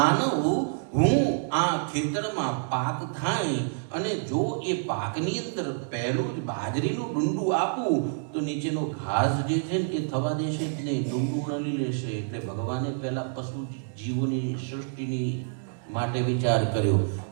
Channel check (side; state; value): left; silent; digital silence